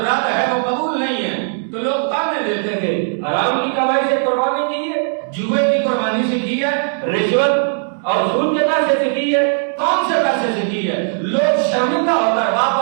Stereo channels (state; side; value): silent; left; digital silence